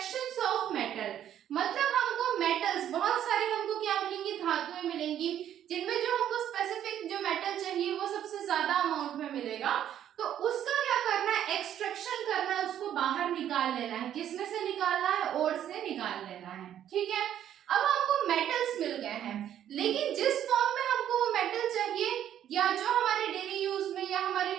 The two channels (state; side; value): quieter; left; 10.6 dB